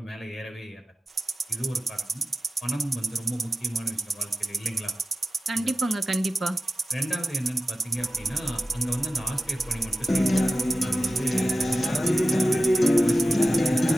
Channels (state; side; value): normal; both; correlation 0.95